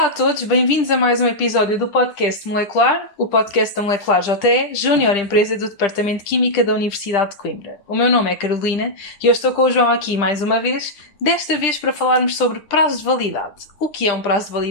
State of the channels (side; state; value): right; late; 10 ms